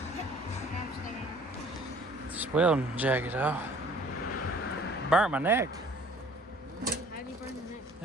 This welding jacket off. Burnt my neck. How do you burn your neck?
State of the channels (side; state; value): both; normal; correlation 0.54